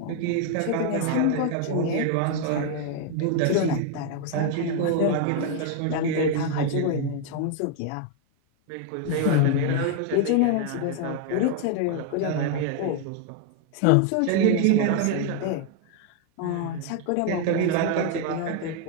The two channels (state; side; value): different; both; correlation 0.01